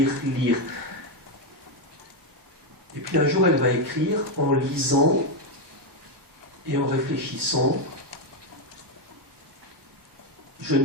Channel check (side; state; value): left; late; 1.1 ms